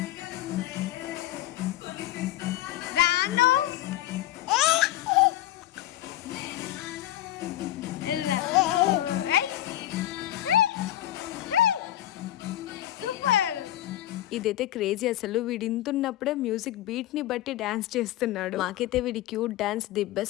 రాను సూపర్. ఇదైతే క్రేజీ అసలు. వీడు ఇంతున్నప్పుడే మ్యూజిక్ బీట్ ని బట్టి డాన్స్ చేస్తున్నాడు. మాకైతే వీడి క్యూట్ డాన్స్ ది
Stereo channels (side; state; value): right; quieter; 14.2 dB